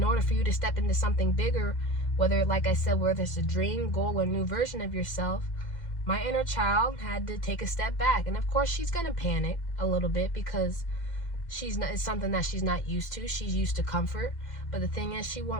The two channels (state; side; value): late; right; 2.1 ms